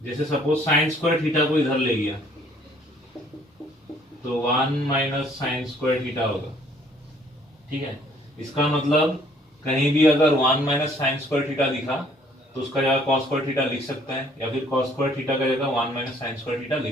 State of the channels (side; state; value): both; normal; correlation 0.61